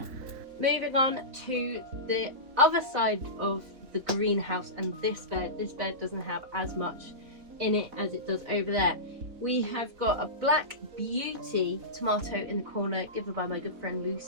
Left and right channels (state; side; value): late; left; 4.1 ms